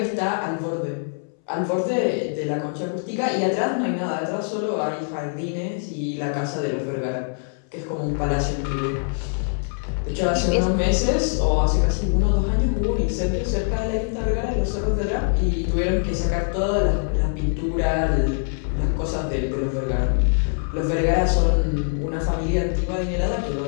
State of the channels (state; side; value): silent; right; 63 dB below the other